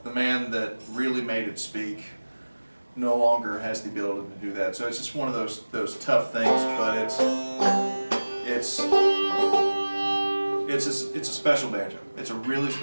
the man that really made it speak no longer has the ability to do that. So it's just one of those tough things, but it's a special banjo. It's a really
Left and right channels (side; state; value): both; inverted; correlation -1.00